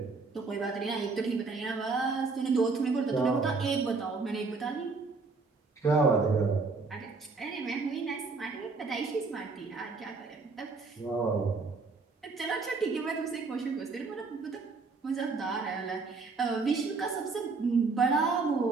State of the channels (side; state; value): left; quieter; 4.2 dB